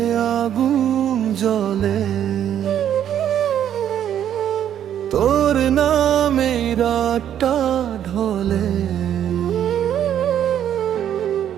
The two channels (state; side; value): quieter; left; 10.1 dB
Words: আগুন জ্বলে, তোর নামে রাতটা ঢলে।